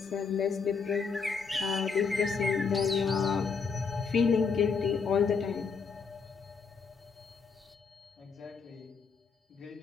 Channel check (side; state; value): right; quieter; 5.4 dB